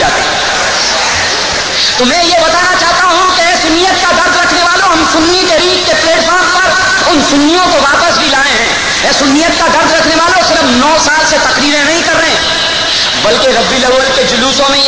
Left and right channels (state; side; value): identical; both; correlation 1.00